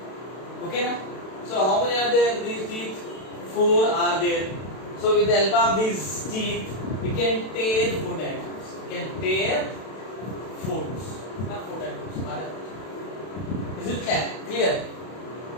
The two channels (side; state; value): right; late; 32 ms